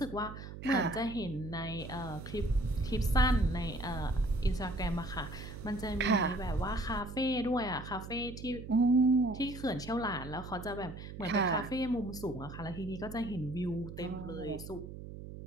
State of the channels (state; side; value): noise; right; hum, 11 dB below the sound